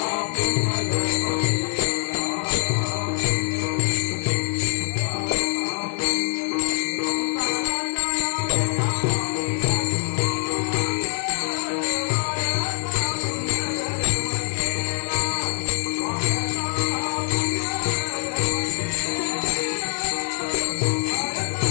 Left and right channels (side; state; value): right; silent; digital silence